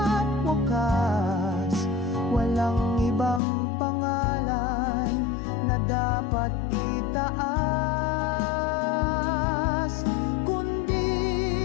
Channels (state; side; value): drops out; right; at 3.4 s